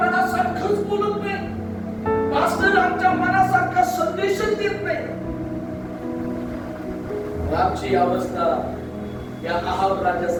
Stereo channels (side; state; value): both; identical; correlation 1.00